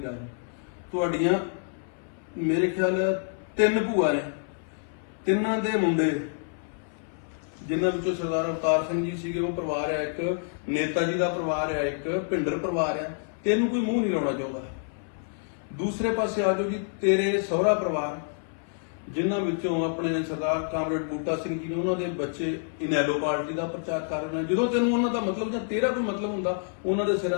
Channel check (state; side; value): silent; right; 60 dB below the other